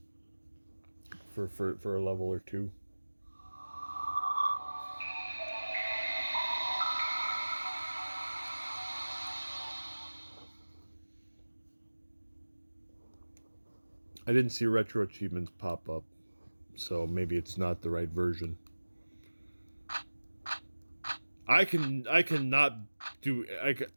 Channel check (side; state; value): both; inverted; correlation -1.00